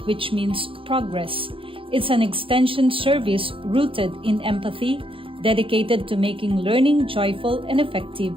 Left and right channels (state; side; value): late; left; 0.26 ms